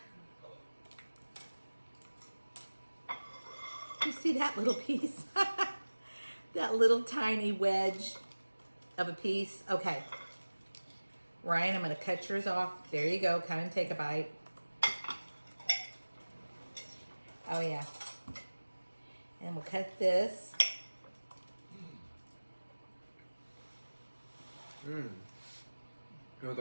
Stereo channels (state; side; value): inverted; both; correlation -1.00